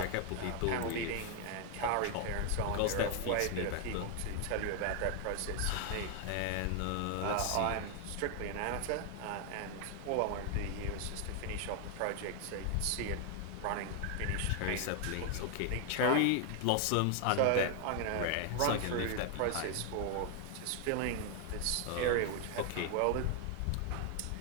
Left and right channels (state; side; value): different; both; correlation 0.00